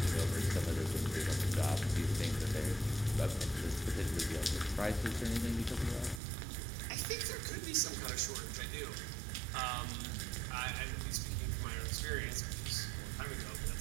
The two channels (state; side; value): drops out; left; at 6.2 s